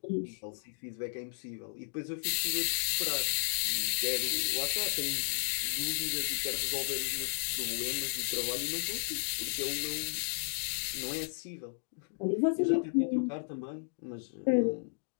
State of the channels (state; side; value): silent; right; digital silence